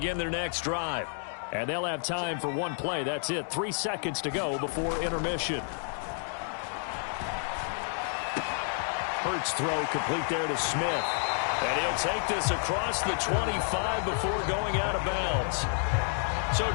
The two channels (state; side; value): silent; right; 58 dB below the other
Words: their next drive. And they'll have time for one play. That's it. 3 seconds to go before intermission. Hurts throw complete there to Smith. And he'll take this across the 25 before going out of bounds. So